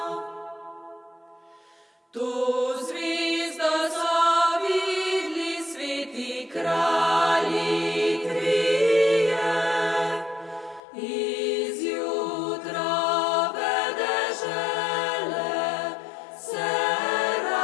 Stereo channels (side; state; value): right; drops out; at 10.8 s